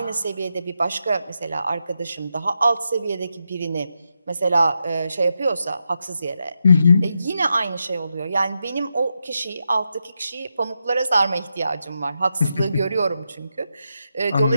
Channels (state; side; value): inverted; both; correlation -0.85